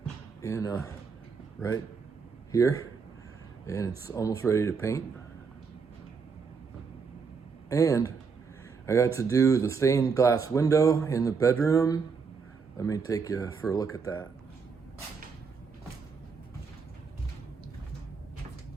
and right here, and it's almost ready to paint. And I got to do the stained glass window in the bedroom. Let me take you for a look at that.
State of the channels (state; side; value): quieter; left; 5.4 dB